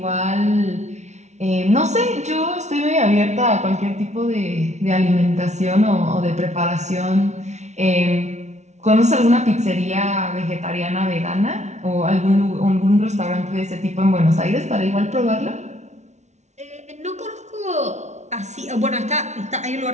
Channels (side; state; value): left; late; 0.33 ms